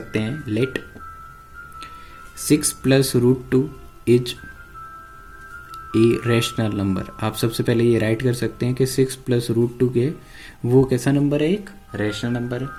हैं let 6 plus root 2 is a rational number. आप सबसे पहले ये राइट कर सकते हैं कि 6 प्लस रूट 2 के वो कैसा नंबर है, एक रैशनल नंबर है।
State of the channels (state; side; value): identical; both; correlation 1.00